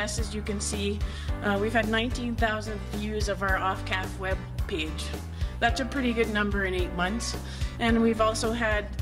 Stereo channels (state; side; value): identical; both; correlation 1.00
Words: as you can see. We've had 19,000 views of our OFCAF web page. That's a pretty good number in 8 months. And we've also had